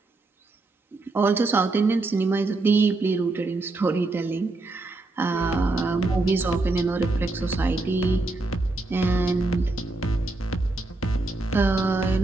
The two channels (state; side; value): quieter; left; 3.2 dB